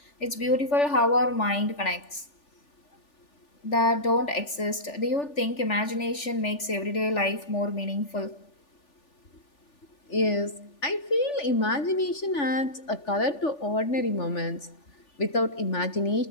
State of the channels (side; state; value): right; late; 3.4 ms